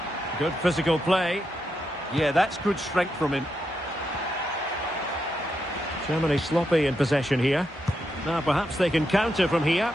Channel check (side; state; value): both; normal; correlation 0.83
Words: Good physical play. Yeah, that's good strength from him. Germany sloppy in possession here. Now perhaps they can counter from here.